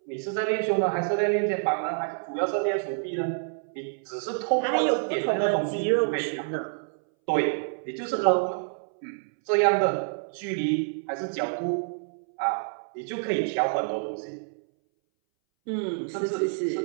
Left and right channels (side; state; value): left; silent; 60 dB below the other